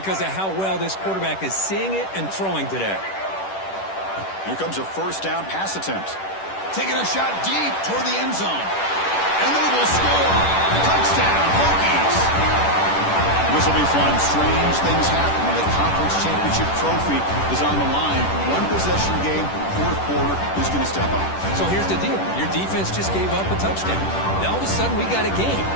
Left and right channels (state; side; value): late; right; 10 ms